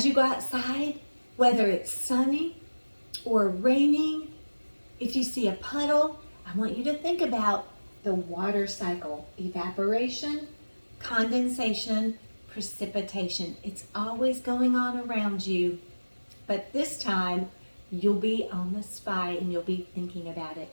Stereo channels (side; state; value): both; inverted; correlation -1.00